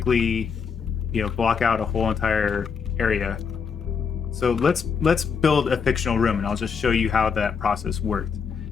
block out a whole entire area. So let's build a fictional room, and I'll just show you how that process worked.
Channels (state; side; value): quieter; right; 6.1 dB